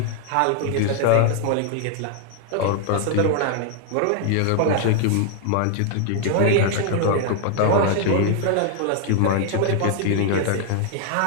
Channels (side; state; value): both; different; correlation 0.00